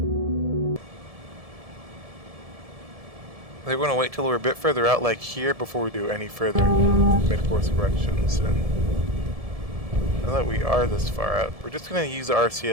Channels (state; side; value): late; left; 1.7 ms